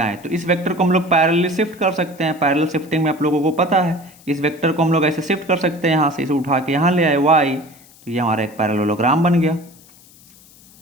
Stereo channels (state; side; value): noise; left; hiss, 25 dB below the sound